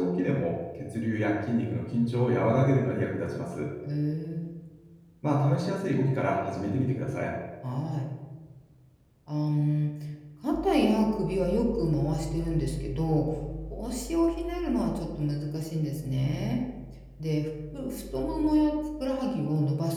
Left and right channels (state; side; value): identical; both; correlation 1.00